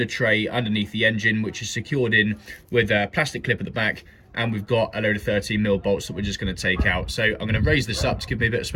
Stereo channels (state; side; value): identical; both; correlation 1.00